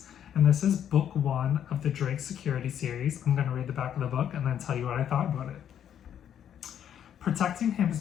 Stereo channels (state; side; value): quieter; right; 9.6 dB